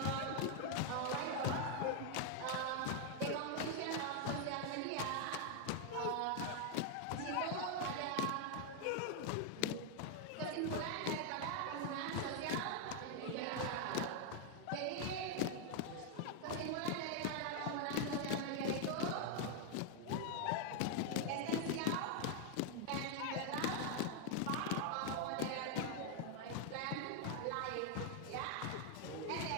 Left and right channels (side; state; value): both; different; correlation 0.00